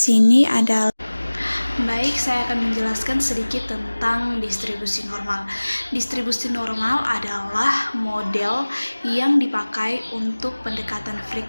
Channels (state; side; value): inverted; both; correlation -1.00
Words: adalah. Baik, saya akan menjelaskan sedikit tentang distribusi normal. Distribusi normal adalah model yang dipakai untuk pendekatan